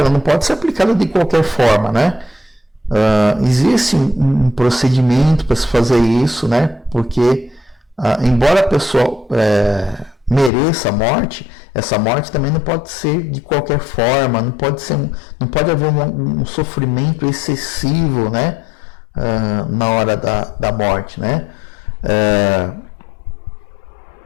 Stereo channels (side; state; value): right; drops out; at 10.5 s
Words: não pode ser aplicada de qualquer forma, né? Existe um procedimento para se fazer isso, né? Porque embora a pessoa mereça a morte, essa morte também não pode ser de qualquer forma, não pode haver um sofrimento excessivo, né? Na hora da morte, né?